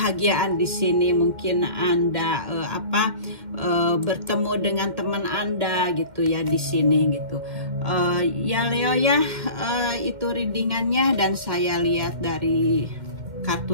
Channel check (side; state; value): left; late; 2.1 ms